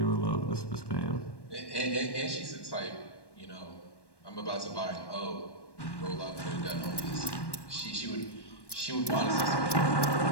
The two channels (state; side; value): late; right; 1.1 ms